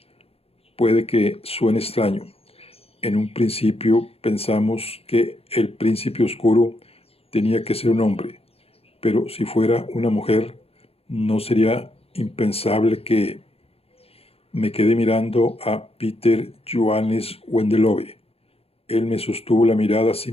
Puede que suene extraño. En un principio pensamos que el príncipe oscuro tenía que ser un hombre, pero si fuera una mujer, no sería impensable que... Me quedé mirando a Peter Johannes Wendelove. Él me sostuvo la mirada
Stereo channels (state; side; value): late; right; 0.29 ms